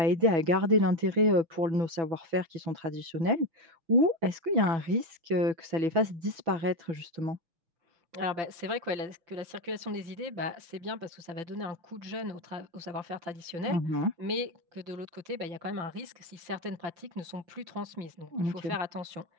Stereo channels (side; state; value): left; late; 5.9 ms